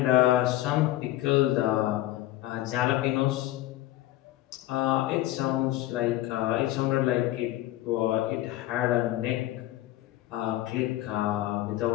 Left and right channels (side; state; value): right; quieter; 15.6 dB